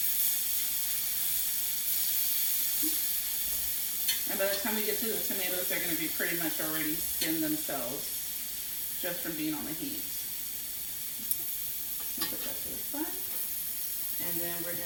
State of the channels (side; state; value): both; identical; correlation 1.00